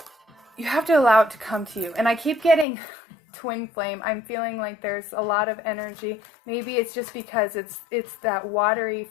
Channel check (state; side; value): drops out; right; at 2.7 s